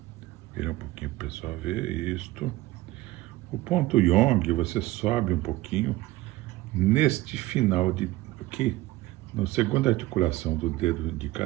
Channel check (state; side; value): quieter; left; 17.6 dB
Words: Vira um pouquinho para o pessoal ver isto. O ponto Yong, você sobe um pouquinho neste final de aqui, na segunda articulação do dedo